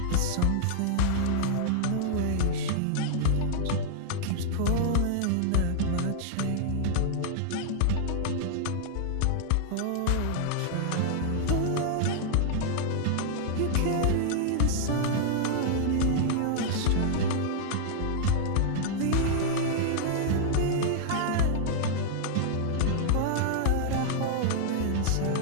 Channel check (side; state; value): both; different; correlation -0.01